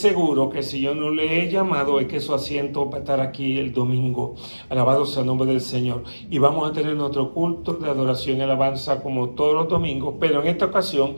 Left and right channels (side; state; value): both; inverted; correlation -1.00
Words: que si yo no le he llamado es que su asiento va a estar aquí el domingo. Alabado sea el nombre del Señor. Y vamos a tener nuestro culto de adoración y alabanza como todos los domingos, pero en esta ocasión